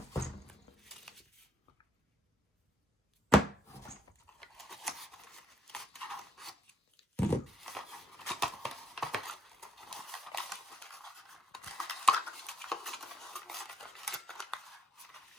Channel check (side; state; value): both; normal; correlation 0.71